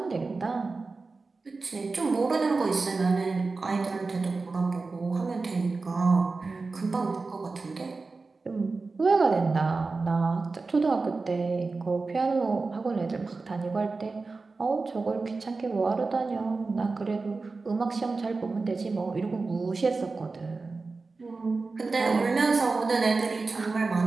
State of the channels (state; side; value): quieter; left; 3.9 dB